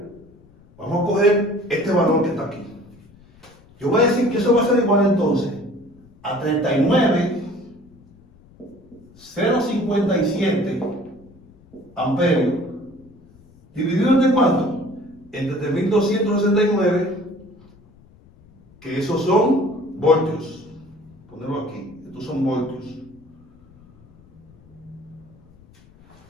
Vamos a coger este valor que está aquí. Yo voy a decir que eso va a ser igual entonces a 39.057 amperios, dividido entre cuánto? Entre 3.269, que esos son voltios. Ponerlo aquí, estos son voltios.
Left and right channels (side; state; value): left; noise; rumble, 26 dB below the sound